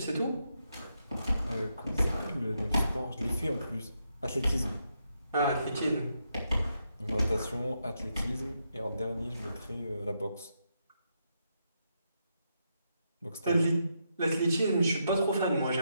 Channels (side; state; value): both; inverted; correlation -0.82